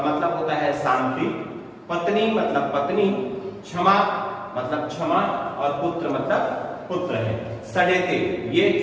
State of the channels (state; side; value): identical; both; correlation 1.00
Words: मतलब होता है शांति, पत्नी मतलब पत्नी, क्षमा मतलब क्षमा, और पुत्र मतलब पुत्र है। सडेते ये